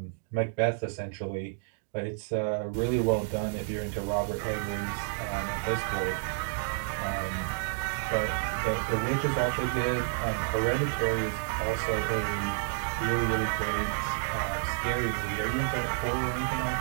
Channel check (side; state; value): left; silent; digital silence